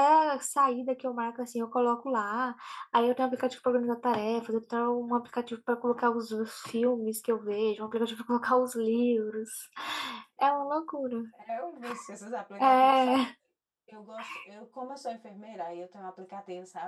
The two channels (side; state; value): both; identical; correlation 1.00